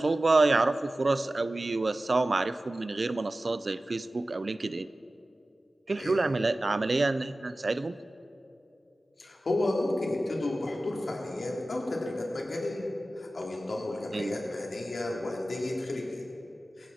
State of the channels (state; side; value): normal; both; correlation 0.96